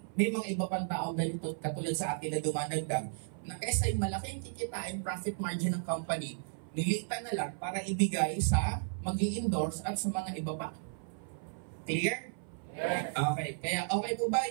May mga iba pang tao ganito, katulad sa atin na dumadagdag, na kaysa yung malaking kikitain profit margin ng company, nilitan na lang para ibigay sa mag-i-endorse at sa mga iba pa. Clear? Yes. Okay. Kaya okay po ba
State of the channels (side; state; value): left; silent; 55 dB below the other